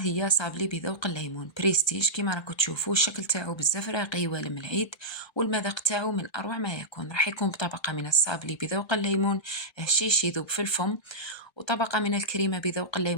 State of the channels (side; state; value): right; late; 1.2 ms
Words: هي صابلي بذوق الليمون بريستيج. كما راكم تشوفوا الشكل تاعو بزاف راقي والم العيد، والمذاق تاعو من أروع ما يكون. راح يكون بطبقة من الصابلي بذوق الليمون هشيش يذوب في الفم، وطبقة من الكريمة بذوق